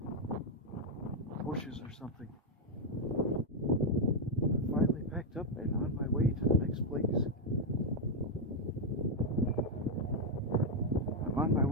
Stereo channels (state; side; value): normal; both; correlation 0.01